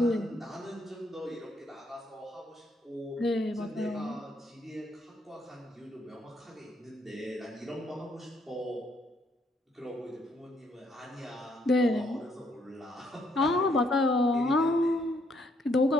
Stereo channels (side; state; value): both; normal; correlation 0.71